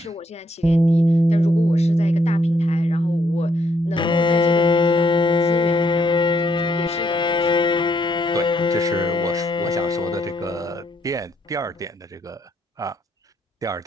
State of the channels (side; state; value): both; normal; correlation 0.73